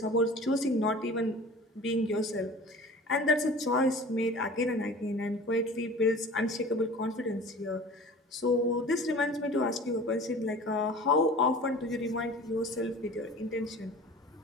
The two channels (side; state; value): both; normal; correlation 0.41